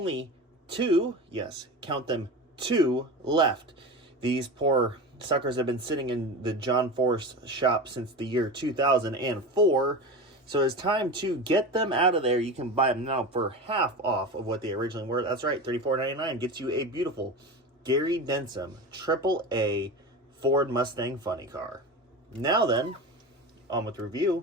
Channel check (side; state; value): both; normal; correlation 0.27